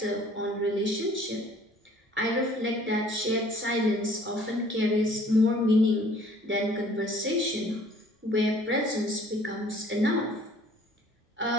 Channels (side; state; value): both; normal; correlation 0.55